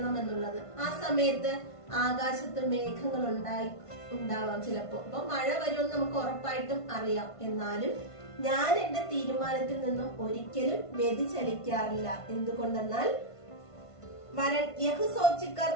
എന്നുള്ളത്. ആ സമയത്ത് ആകാശത്ത് മേഘങ്ങൾ ഉണ്ടാവാം ചിലപ്പോ. അപ്പൊ മഴ വരുമെന്ന് നമുക്ക് ഉറപ്പായിട്ടും അറിയാം. എന്നാലും ഞാൻ എന്റെ തീരുമാനത്തിൽ നിന്നും ഒരിക്കലും വ്യതിചലിക്കാറില്ല. എന്തുകൊണ്ടെന്നാൽ वरन यह सोचकर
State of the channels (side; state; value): right; late; 1.5 ms